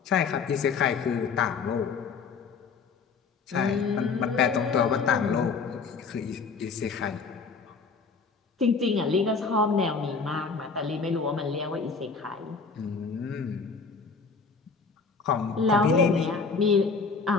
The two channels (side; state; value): right; quieter; 5.0 dB